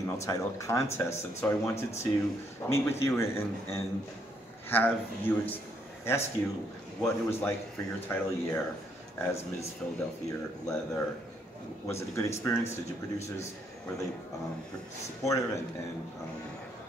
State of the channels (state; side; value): normal; both; correlation 0.72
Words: title contests, and so I wanted to meet with you and have you ask you what it was like for your title year as Ms. Philadelphia Leather. Was it a good experience? Did your producers, were they supportive and